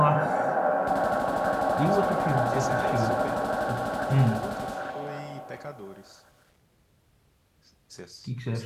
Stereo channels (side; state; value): both; identical; correlation 1.00